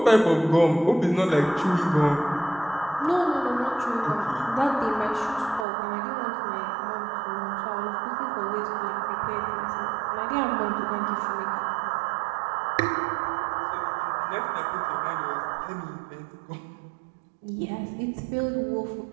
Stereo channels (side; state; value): left; drops out; at 5.7 s